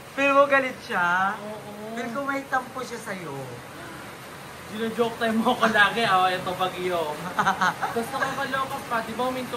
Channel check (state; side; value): identical; both; correlation 1.00